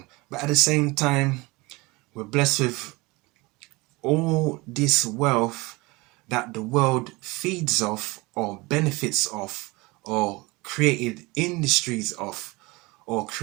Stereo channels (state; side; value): quieter; left; 23.7 dB